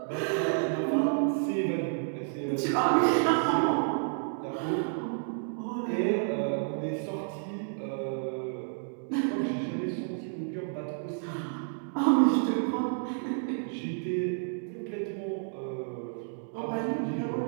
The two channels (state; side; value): silent; left; digital silence